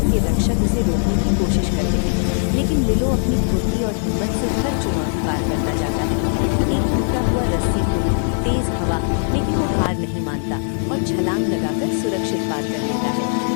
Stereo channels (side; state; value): right; silent; digital silence